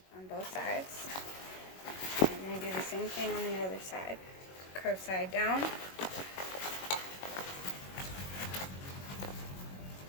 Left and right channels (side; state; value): right; late; 21 ms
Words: on both sides. And then do the same thing on the other side. Curved side down.